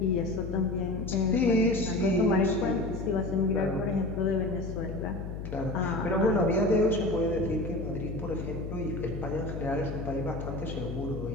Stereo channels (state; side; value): noise; left; hum, 7 dB below the sound